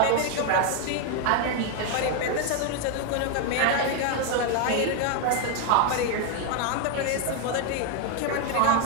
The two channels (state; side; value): different; both; correlation 0.01